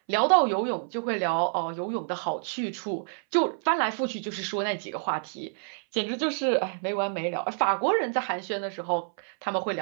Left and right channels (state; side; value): silent; left; 59 dB below the other